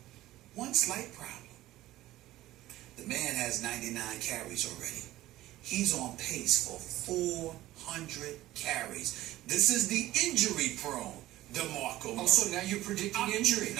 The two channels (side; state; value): left; quieter; 15.9 dB